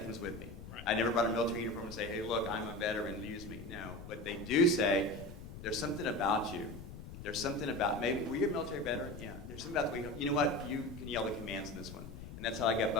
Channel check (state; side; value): noise; left; rumble, 12 dB below the sound